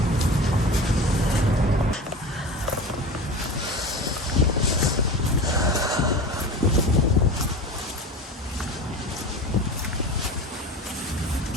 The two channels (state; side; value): normal; both; correlation 0.32